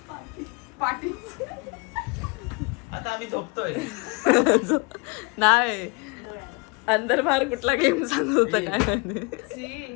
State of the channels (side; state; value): right; quieter; 30.3 dB